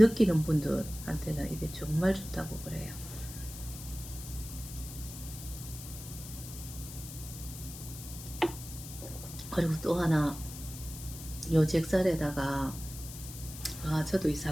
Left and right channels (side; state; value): left; noise; hiss, 12 dB below the sound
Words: 분들한테는 이게 정말 좋다고 그래요. 그리고 또 하나, 요 잭살에다가 저도 이